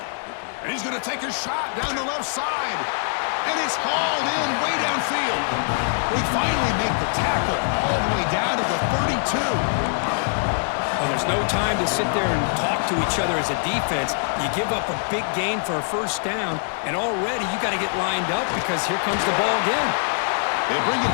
And he's going to take a shot down the left side. And it's hauled in way downfield. We finally make the tackle all the way down to the 32. Well, there's no time to sit there and talk to each other as a defense. You give up a big gain for a first down, and already you got to get lined up because here comes the ball again. They bring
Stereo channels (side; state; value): right; silent; digital silence